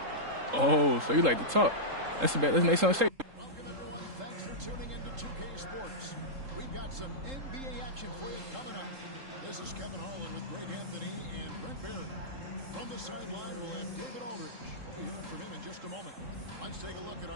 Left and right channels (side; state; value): left; late; 3.7 ms